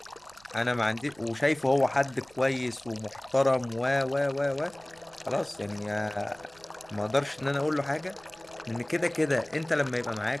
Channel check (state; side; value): noise; right; rumble, 28 dB below the sound